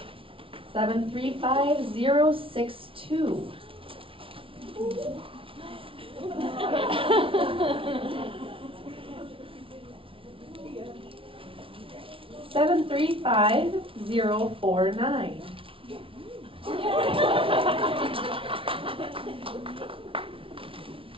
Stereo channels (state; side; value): late; left; 0.26 ms